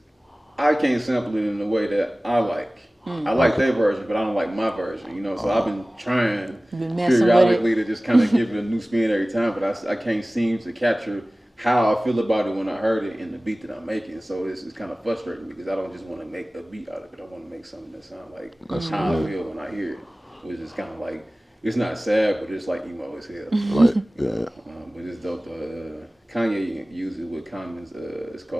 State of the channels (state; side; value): normal; both; correlation 0.98